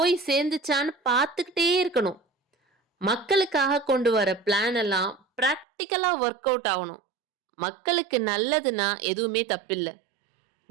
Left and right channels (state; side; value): drops out; left; at 5.7 s